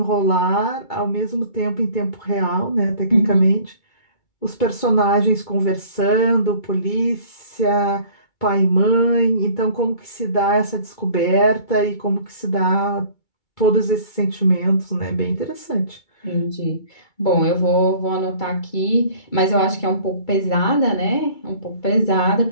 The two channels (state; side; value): late; right; 2.3 ms